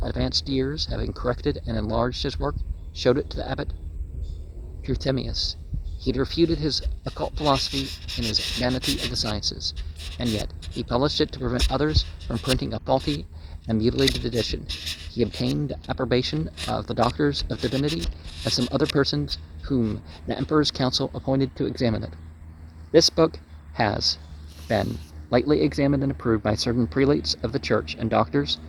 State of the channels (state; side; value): identical; both; correlation 1.00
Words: advanced years, having corrected and enlarged his work, showed it to the abbot Trithemius. He had refuted his occult philosophy in his Vanity of the Sciences, and yet he published it to prevent others from printing a faulty and mutilated edition. He obtained approbation of the doctors of divinity and some other persons whom the Emperor's council appointed to examine it. This book has been lately examined and approved by certain prelates of the church and doctors